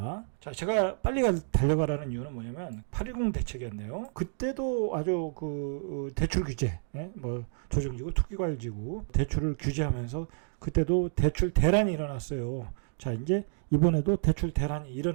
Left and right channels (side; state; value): left; silent; digital silence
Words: 제가 빨리 달려가라는 이유는 뭐냐면 8.10 대책이었네요. 그때도 아주 그 대출 규제, 조정지구, 투기과열지구 대출을 규제하면서 그때도 대출 대란이 일어났어요. 이제 이번에도 대출 대란이